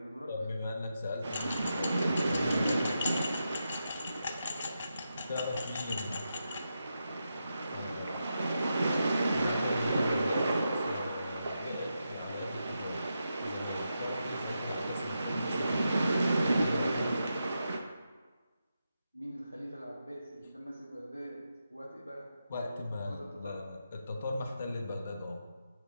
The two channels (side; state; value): both; inverted; correlation -0.86